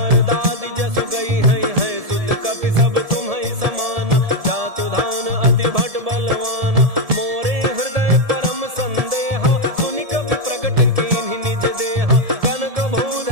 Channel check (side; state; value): left; late; 1.7 ms